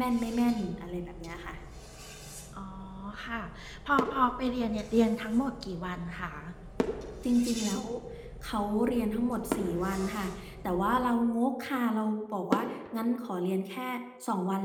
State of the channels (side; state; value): both; identical; correlation 1.00